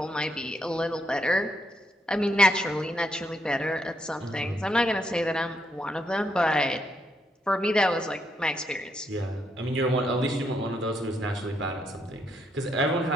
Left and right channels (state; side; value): normal; both; correlation 0.77